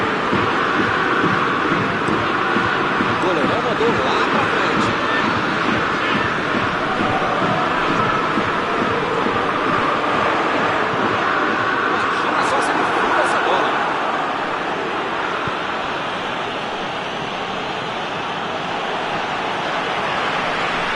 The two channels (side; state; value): both; identical; correlation 1.00